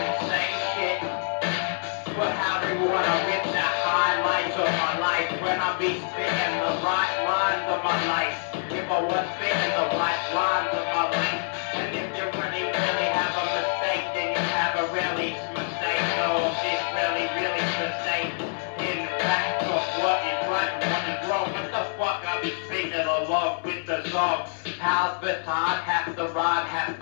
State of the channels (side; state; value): right; silent; 61 dB below the other